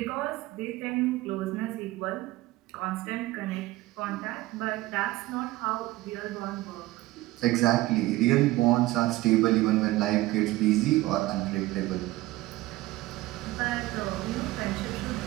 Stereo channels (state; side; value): quieter; left; 18.1 dB